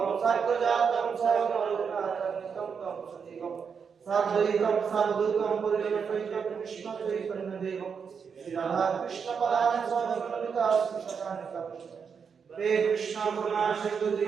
साग्रजातं सागररघुनाथान्वितं तं सजीवं साद्वैतं सावधूतं परिजनसहितं कृष्णचैतन्यदेवं श्रीराधाकृष्णपदानि स्वामिनमिता श्रीशतानिकं। हे कृष्ण करुणा सिंधु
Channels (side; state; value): left; quieter; 6.3 dB